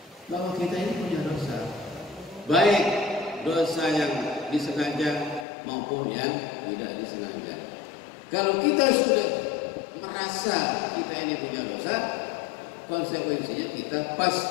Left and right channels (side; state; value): right; drops out; at 5.5 s